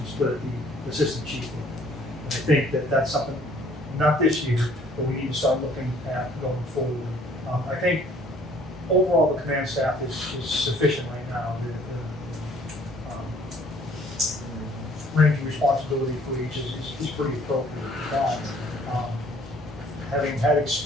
split at the assistant chief level. And I think that that's something, not this year, but we need to start looking at going forward. I think overall the command staff is sufficient right now. The range of responsibility for each is pretty appropriate for that. Having had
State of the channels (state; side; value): normal; both; correlation 0.58